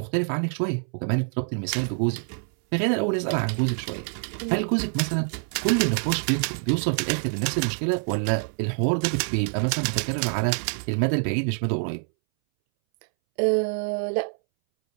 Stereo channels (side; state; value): left; silent; 61 dB below the other